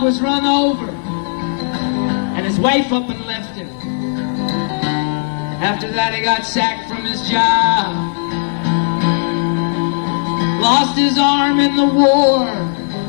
was run over, and his wife up and left him. After that he got sacked from his job. Lost his arm in the war,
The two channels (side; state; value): right; silent; digital silence